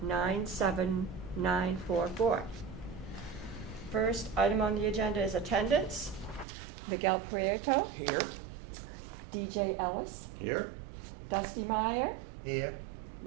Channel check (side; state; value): left; drops out; at 6.5 s